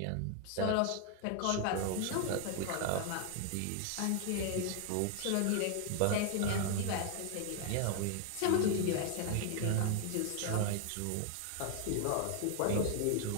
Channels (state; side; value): different; both; correlation 0.00